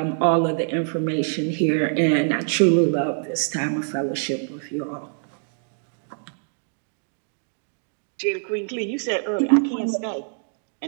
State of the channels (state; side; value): silent; left; 62 dB below the other